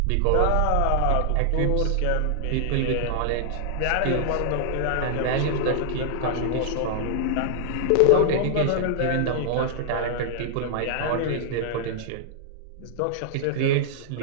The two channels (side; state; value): both; different; correlation -0.01